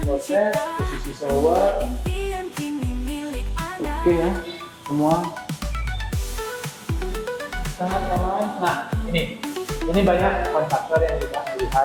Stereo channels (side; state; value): both; identical; correlation 1.00